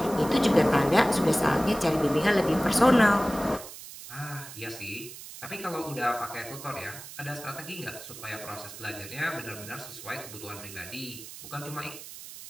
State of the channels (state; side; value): noise; right; hiss, 14 dB below the sound